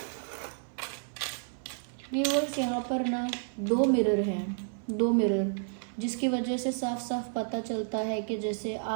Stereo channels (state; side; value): silent; left; 56 dB below the other